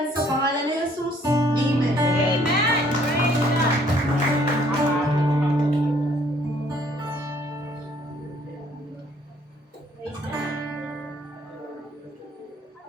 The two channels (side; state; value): both; normal; correlation 0.62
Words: sa pangalan ni Jesus. Amen. Amen. Praise God. Praise God.